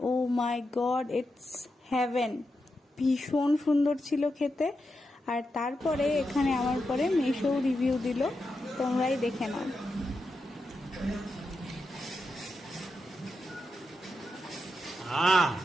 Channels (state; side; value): normal; both; correlation 0.87